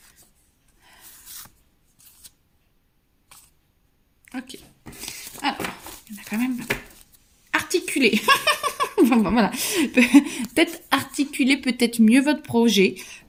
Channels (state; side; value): identical; both; correlation 1.00